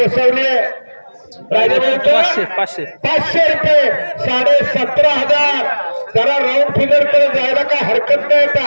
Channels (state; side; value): inverted; both; correlation -1.00